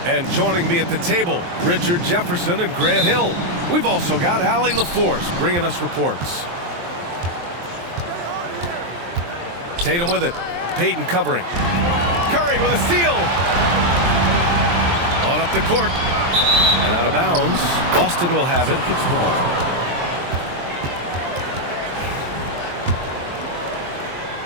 and joining me at the table, Richard Jefferson and Grant Hill. We've also got Allie LaForce bringing us reports. Tatum with it. Payton covering. Curry with a steal. On up the court. And out of bounds. Boston will have it.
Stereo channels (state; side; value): late; left; 23 ms